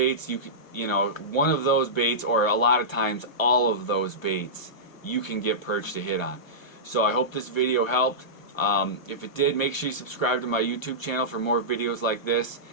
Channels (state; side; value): late; right; 1.1 ms